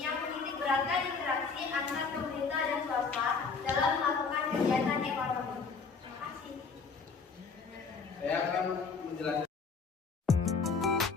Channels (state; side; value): quieter; right; 5.0 dB